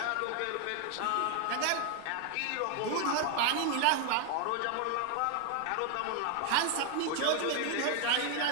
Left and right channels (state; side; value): different; both; correlation 0.01